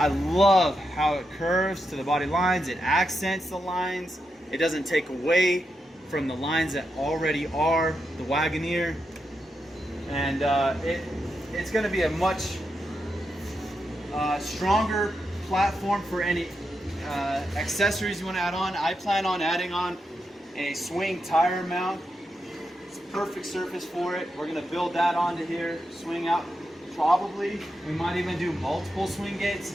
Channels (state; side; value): normal; both; correlation 0.85